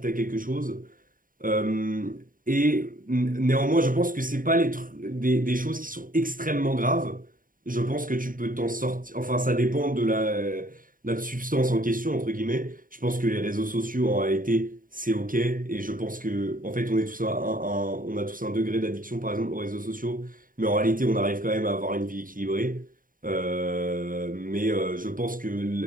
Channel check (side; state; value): left; late; 0.40 ms